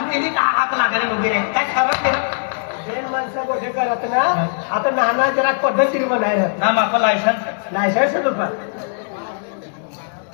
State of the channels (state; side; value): silent; right; digital silence